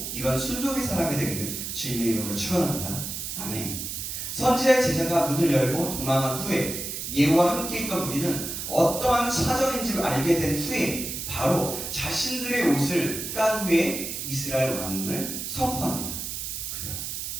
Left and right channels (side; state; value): right; noise; hiss, 5 dB below the sound